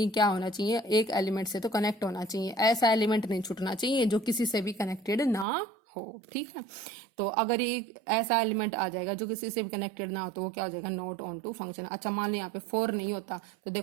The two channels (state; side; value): drops out; left; at 5.5 s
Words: क्या होना चाहिए, एक एलिमेंट से तो कनेक्ट होना चाहिए, ऐसा एलिमेंट नहीं छूटना चाहिए जो किसी से भी कनेक्टेड ना हो, ठीक है। तो अगर ये ऐसा एलिमेंट आ जाएगा जो किसी से भी कनेक्टेड ना हो तो वो क्या हो जाएगा नॉट ऑन टू फंक्शन। अच्छा मान लो यहाँ पे 4 नहीं होता तो